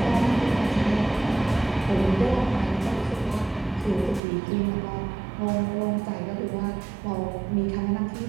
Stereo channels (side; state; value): left; drops out; at 4.2 s